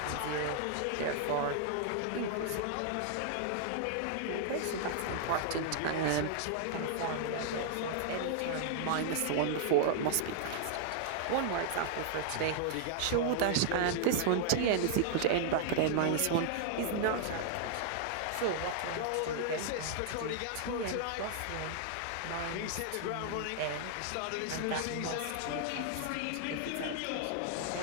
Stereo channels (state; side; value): different; both; correlation -0.01